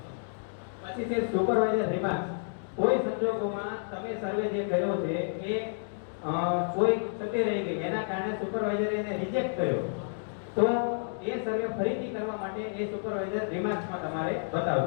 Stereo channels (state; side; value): silent; right; digital silence